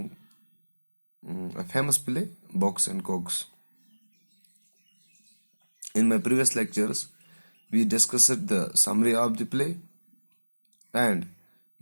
a famous play, Box and Cogs. In my previous lectures, we discussed the summary of the play and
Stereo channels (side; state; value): both; inverted; correlation -1.00